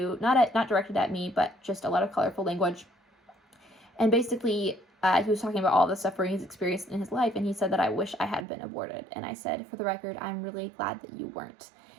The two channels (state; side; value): drops out; left; at 8.5 s